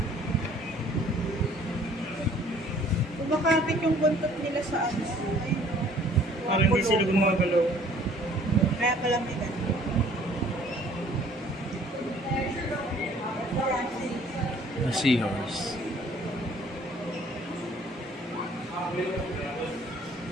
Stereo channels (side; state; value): both; normal; correlation 0.56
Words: Kumakapit yung buntot nila sa ano. Parang hindi sila gumagalaw. Kaya kalamitan. A seahorse.